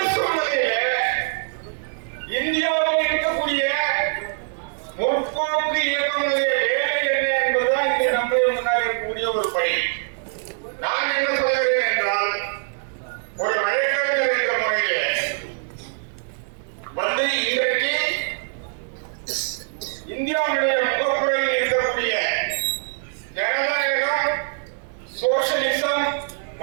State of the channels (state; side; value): silent; left; digital silence